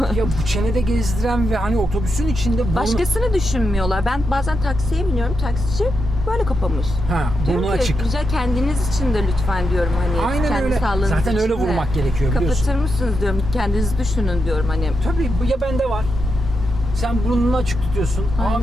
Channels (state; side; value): normal; both; correlation 0.85